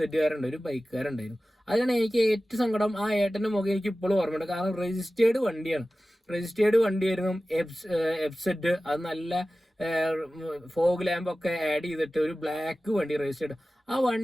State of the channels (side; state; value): both; normal; correlation 0.96